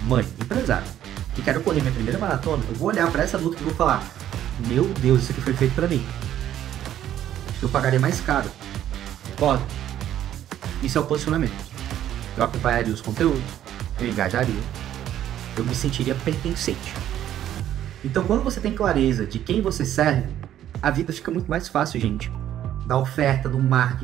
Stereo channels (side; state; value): left; quieter; 11.5 dB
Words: mãe, empresária, que quero correr minha primeira maratona, eu vou olhar para essa luta e vou falar: meu Deus, isso aqui foi feito para mim. Eu pagaria mais caro. Pode. Isso é o posicionamento. Eu acompanharia os conteúdos, eu engajaria, eu me sentiria pertencente. Então, quando você tem clareza de quem você serve, a vida fica muito mais fácil, gente. Da oferta, do